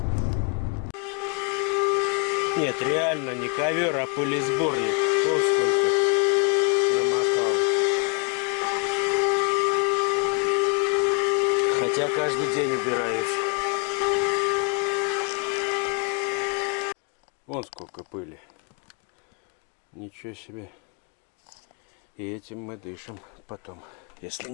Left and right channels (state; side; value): quieter; right; 33.0 dB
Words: Нет, реально не ковер, а пылесборник. Вот сколько намокал. Хотя каждый день убираюсь. Вон сколько пыли. Ничего себе. И этим мы дышим потом, если